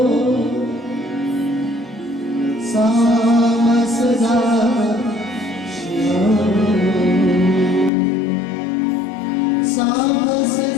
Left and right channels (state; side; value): drops out; right; at 7.9 s